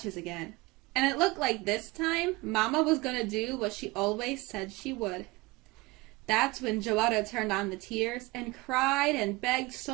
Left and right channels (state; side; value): quieter; left; 22.6 dB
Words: again, and it looked like this time Mama was going to do what she always said she would. That's when Joetta turned on the tears and cried and begged